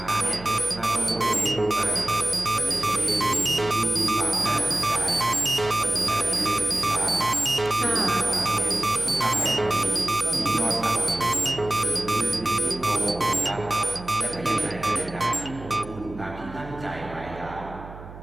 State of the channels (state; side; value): noise; right; hum, 15 dB below the sound